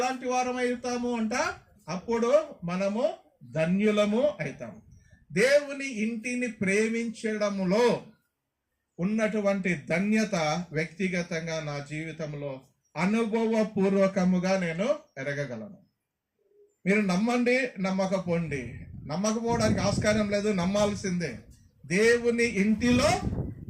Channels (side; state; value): both; identical; correlation 1.00